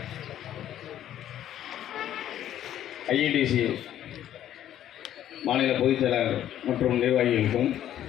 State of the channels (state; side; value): quieter; right; 11.5 dB